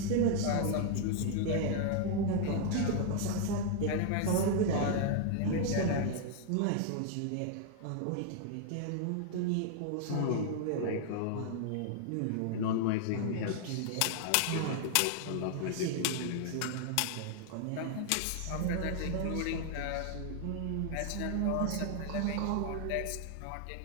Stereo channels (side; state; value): both; different; correlation 0.00